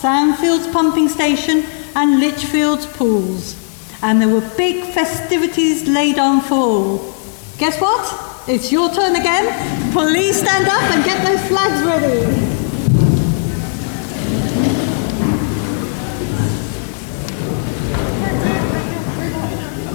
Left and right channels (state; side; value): silent; right; digital silence